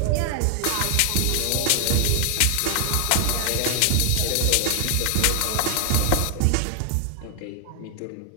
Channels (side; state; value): both; different; correlation 0.00